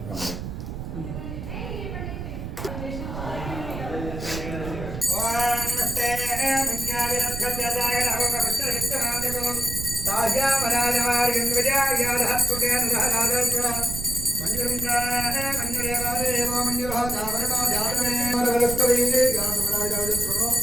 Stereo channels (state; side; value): noise; right; rumble, 7 dB below the sound